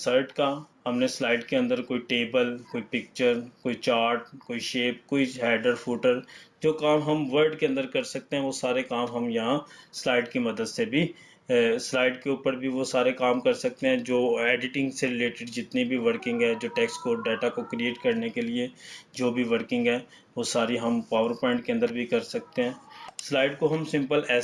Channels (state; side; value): identical; both; correlation 1.00